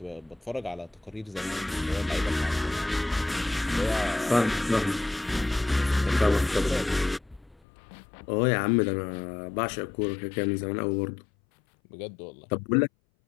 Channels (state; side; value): drops out; right; at 7.6 s